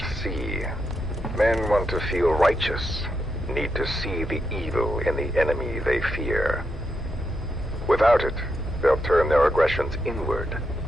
see? Men want to feel righteous, need to see the evil in the enemy they fear. Without it, they'll turn their aggressions inward,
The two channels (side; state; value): both; normal; correlation 0.83